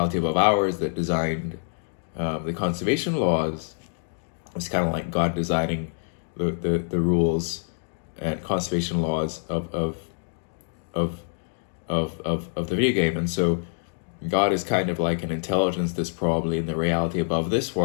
above ours that designed the conservation laws, it's kind of like God designing the rules and conservation laws of the video game. And so God is kind of like an intelligence that's probably in the reality above this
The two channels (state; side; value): silent; right; digital silence